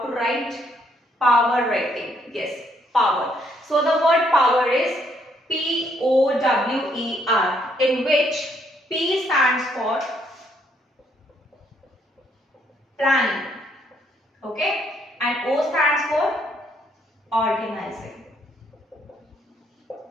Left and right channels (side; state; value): both; normal; correlation 0.70